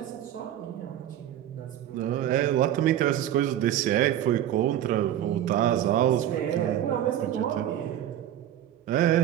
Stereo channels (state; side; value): quieter; left; 11.6 dB